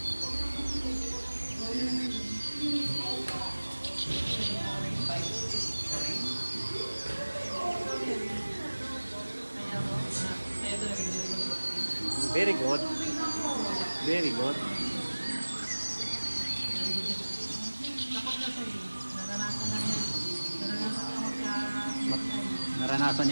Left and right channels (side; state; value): both; inverted; correlation -1.00